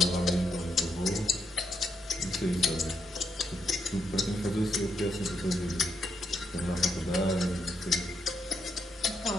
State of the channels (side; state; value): both; normal; correlation 0.79